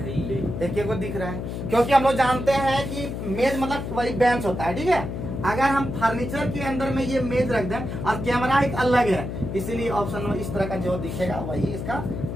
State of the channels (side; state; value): left; noise; hum, 5 dB below the sound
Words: देखिए को दिख रहा है, क्योंकि हम लोग जानते हैं कि मेज मतलब वही बेंच होता है, ठीक है। अगर हम फर्नीचर के अंदर में ये मेज रख दें और कैमरा एक अलग है, इसीलिए ऑप्शन में इस तरह का जो दिखेगा वही इसका